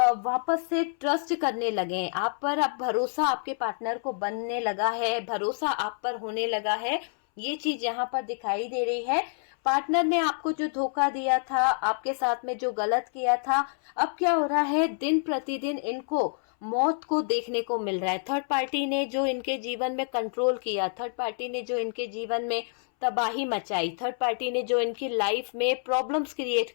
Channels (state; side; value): silent; right; 60 dB below the other